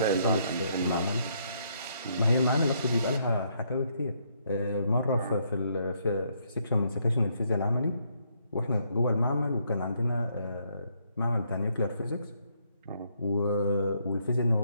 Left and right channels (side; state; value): both; inverted; correlation -0.72